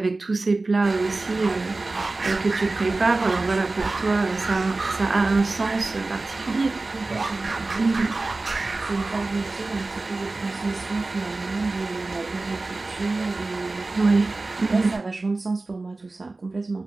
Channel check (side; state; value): left; quieter; 3.3 dB